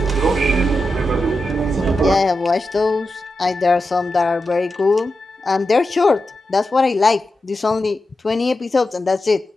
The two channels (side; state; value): both; normal; correlation 0.90